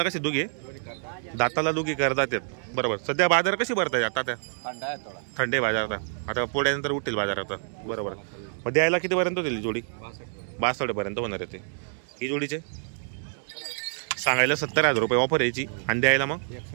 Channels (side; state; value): left; silent; digital silence